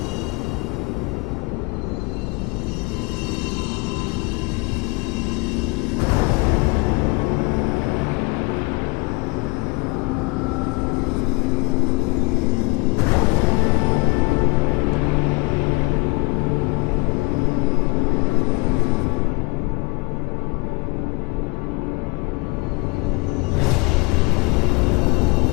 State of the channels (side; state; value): right; quieter; 26.8 dB